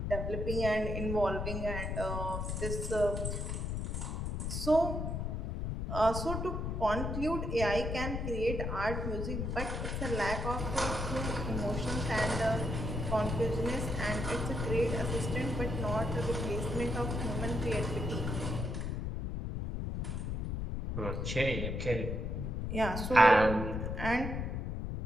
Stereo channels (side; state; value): left; noise; rumble, 2 dB below the sound